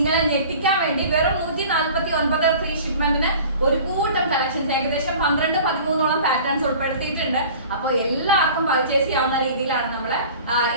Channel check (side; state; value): both; inverted; correlation -0.43